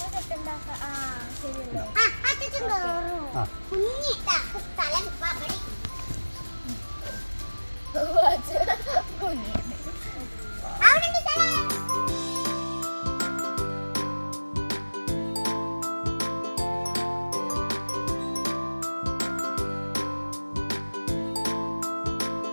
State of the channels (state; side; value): inverted; both; correlation -1.00